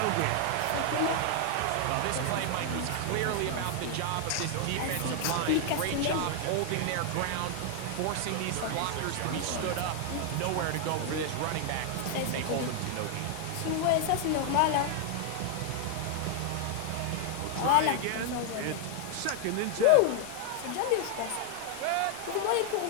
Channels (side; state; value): both; different; correlation 0.00